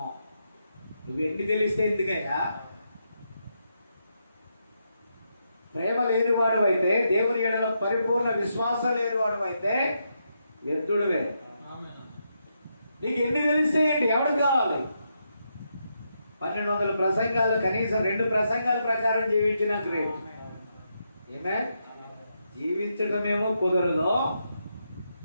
నువ్వు ఎన్ని తెలిస్తే ఎందుకయ్యా? ప్రేమ లేనివాడు అయితే, దేవుని ఎడల పరిపూర్ణ విశ్వాసం లేనివాడు అయితే వ్యర్థుడువే. నీకు ఎన్ని తెలిస్తే ఏంటి? ఎవరికి కావాలి? 1200 ప్రసంగాలు కనీసం 2 ప్రసంగాల ప్రకారం జీవించిన గ్రేట్. ఏమే జీవించడమేమో కుదరదు.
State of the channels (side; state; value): both; inverted; correlation -0.82